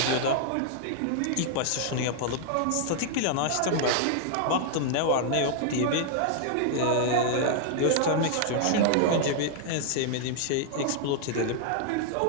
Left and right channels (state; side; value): different; both; correlation -0.01